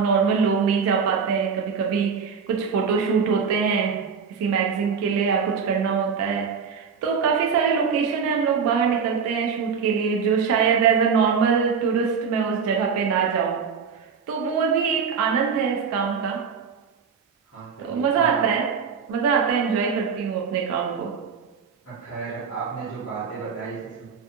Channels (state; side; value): quieter; left; 6.1 dB